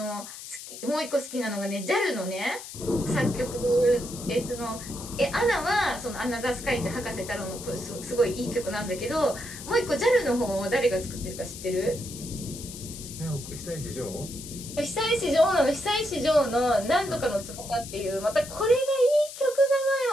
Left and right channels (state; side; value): noise; left; hiss, 12 dB below the sound